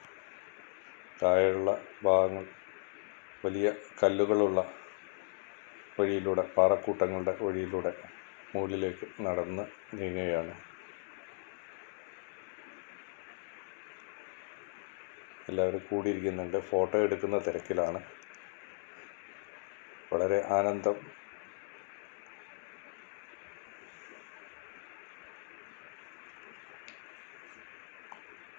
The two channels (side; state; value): right; silent; digital silence